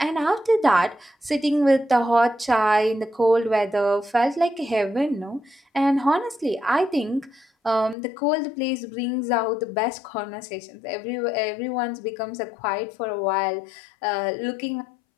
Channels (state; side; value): drops out; right; at 8.0 s